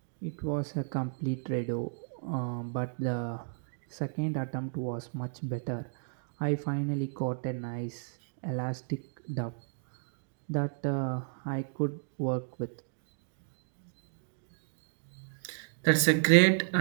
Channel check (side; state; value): left; silent; digital silence